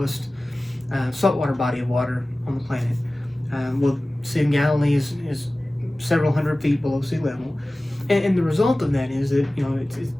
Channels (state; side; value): normal; both; correlation 0.97